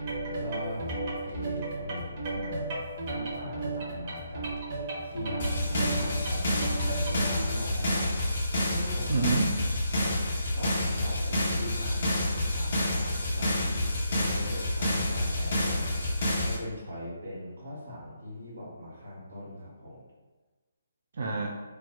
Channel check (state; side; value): inverted; both; correlation -0.77